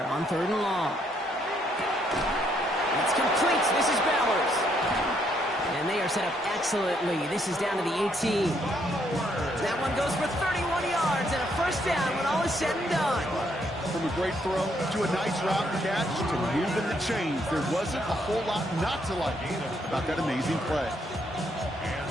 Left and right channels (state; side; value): normal; both; correlation 0.72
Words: on 3rd and long. It's complete. This is Bowers. And they are set up excellently. This is down to the 18. That one goes for 31 yards and a 1st down when all is said and done. From a great throw to a nice route and catch to moving the chains, there wasn't a whole lot not to like about that amazing play. And